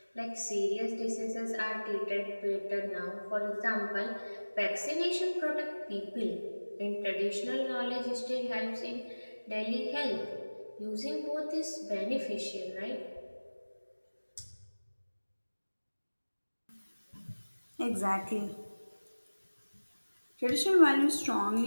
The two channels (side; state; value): both; inverted; correlation -1.00